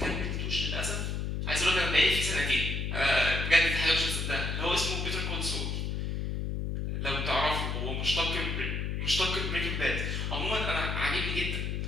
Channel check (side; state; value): left; noise; hum, 2 dB below the sound